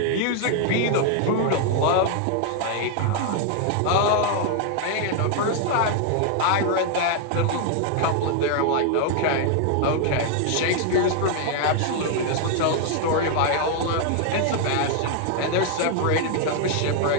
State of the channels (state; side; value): different; both; correlation 0.00